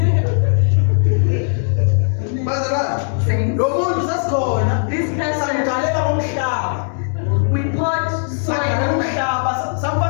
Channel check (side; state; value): right; silent; 67 dB below the other